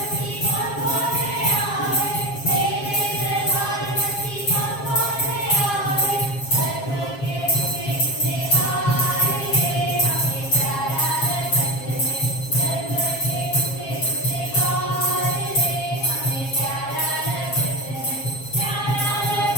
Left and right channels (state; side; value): late; right; 7.4 ms